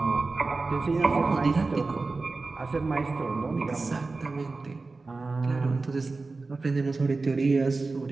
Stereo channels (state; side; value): quieter; left; 3.7 dB